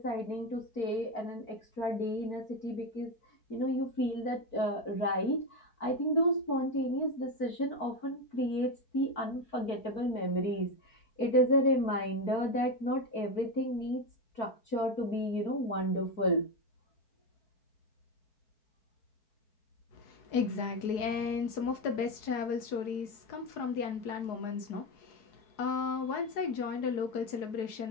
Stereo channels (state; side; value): late; right; 4.7 ms